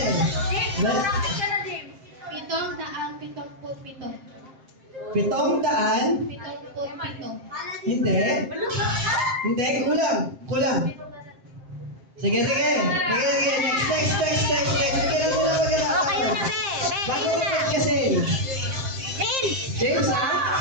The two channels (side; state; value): left; late; 7.6 ms